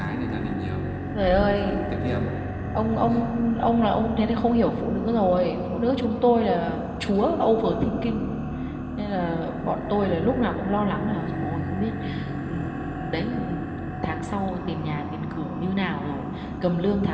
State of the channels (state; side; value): identical; both; correlation 1.00